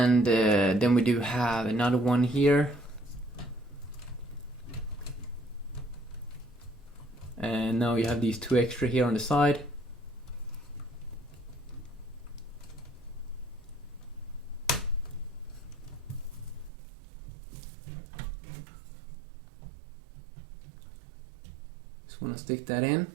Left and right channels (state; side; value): drops out; left; at 16.7 s